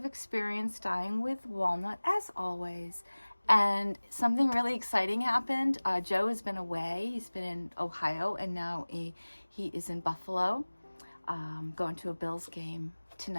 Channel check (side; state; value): both; inverted; correlation -1.00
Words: experience dyeing with walnut as always. And something really exciting happened. Joe has been away. He's been in Ohio, and now he is in Buffalo, going to a Bills game